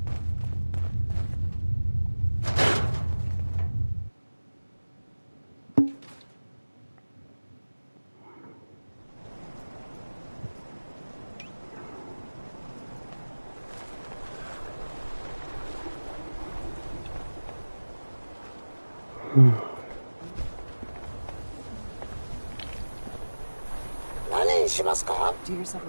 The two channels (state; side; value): inverted; both; correlation -1.00